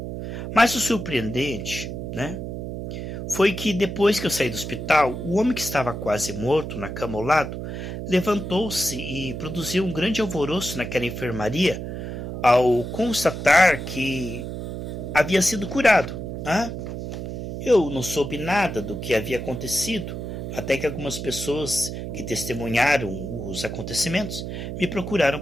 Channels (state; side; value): noise; right; hum, 6 dB below the sound